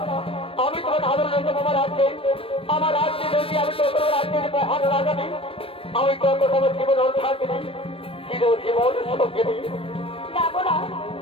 আমি তোমার আদর রয়েছে আমার রাজ্যে যদি আমি তো কোনো রাজ্যের মহান রাজা নেই আমি তো তোমার জীবন থাকি চিরজীবন সঙ্গে নেই না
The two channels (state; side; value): late; right; 0.27 ms